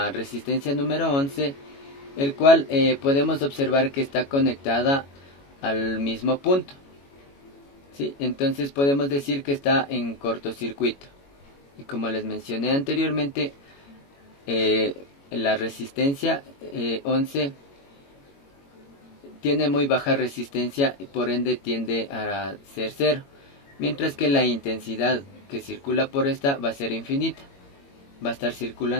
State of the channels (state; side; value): late; right; 22 ms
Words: resistencia número 11, el cual podemos observar que está conectada al mismo punto. ¿Sí? Entonces podemos decir que está en cortocircuito. Y como les mencioné anteriormente, la resistencia 11 tiene muy baja resistencia y por ende tiende a ser cero, mientras que la intensidad que circula por esta va a ser infinita, va a estar